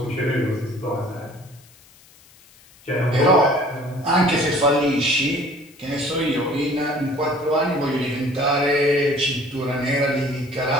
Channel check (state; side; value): noise; left; hiss, 27 dB below the sound